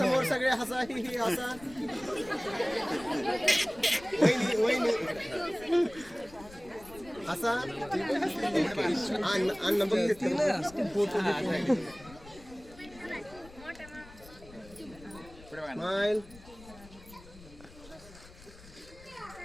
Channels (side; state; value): left; noise; rumble, 20 dB below the sound